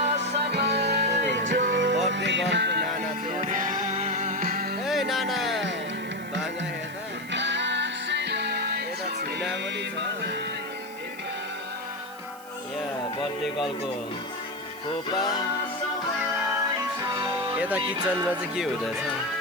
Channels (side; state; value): right; noise; hiss, 20 dB below the sound